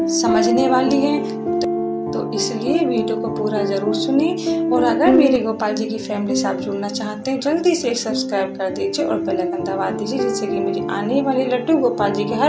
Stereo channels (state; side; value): identical; both; correlation 1.00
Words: समझने वाली है, तो इसलिए वीडियो को पूरा जरूर सुने। और अगर मेरे गोपाल जी की फैमिली से आप जुड़ना चाहते हैं, जल्दी से सब्सक्राइब कर दीजिए और बेल आइकन दबा दीजिए, जिससे कि मेरी आने वाली लड्डू गोपाल जी की